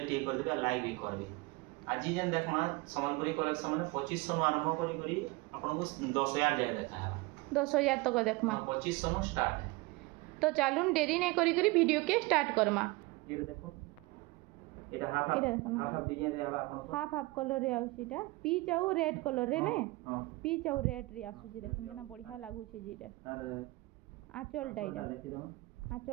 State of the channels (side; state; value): left; quieter; 22.9 dB